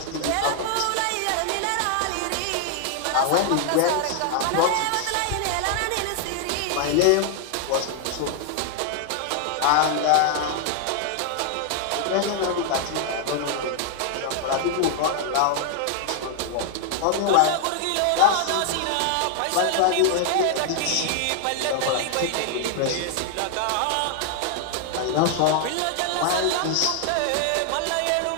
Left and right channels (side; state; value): both; different; correlation 0.00